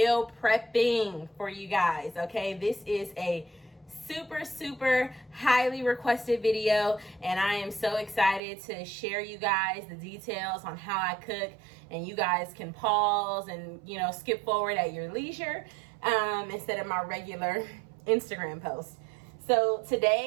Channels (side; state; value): left; drops out; at 8.4 s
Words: prepping for you guys. Okay, this is a super highly requested video, and I am so excited to share you guys the details on how I cook, and you guys can pause and skip forward at your leisure instead of my regular Instagram post. So